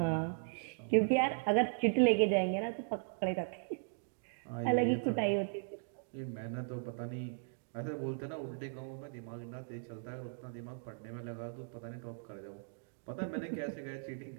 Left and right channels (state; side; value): silent; left; digital silence